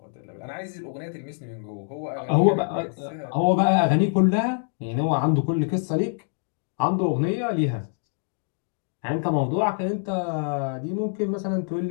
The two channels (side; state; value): right; silent; 61 dB below the other